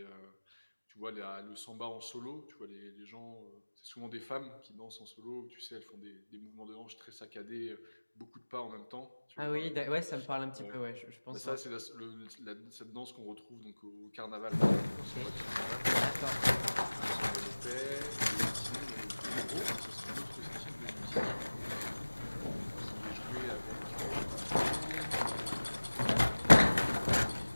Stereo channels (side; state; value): both; inverted; correlation -1.00